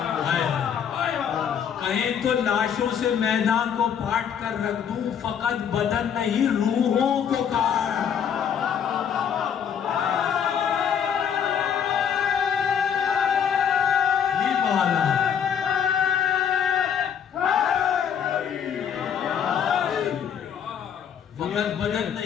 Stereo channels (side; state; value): right; quieter; 8.1 dB